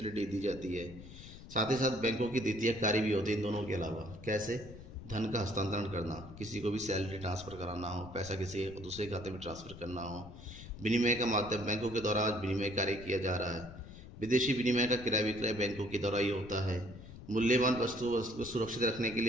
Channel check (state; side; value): noise; left; rumble, 15 dB below the sound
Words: दी जाती है। साथ ही साथ बैंकों की द्वितीय कार्य भी होती है इन दोनों के अलावा। कैसे? धन का हस्तांतरण करना, किसी को भी सैलरी ट्रांसफ़र कराना हो, पैसा किसी दूसरे खाते में ट्रांसफ़र करना हो। विनिमय का माध्यम बैंकों के द्वारा विनिमय कार्य किया जा रहा है। विदेशी विनिमय का क्रय विक्रय बैंकों के द्वारा ही होता है। मूल्यवान वस्तुओं को सुरक्षित रखने के